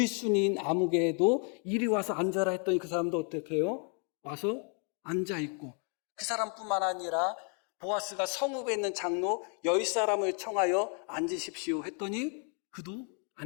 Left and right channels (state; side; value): quieter; right; 39.9 dB